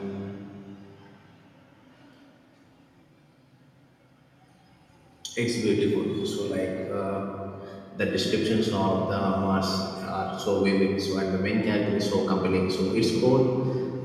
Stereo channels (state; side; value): identical; both; correlation 1.00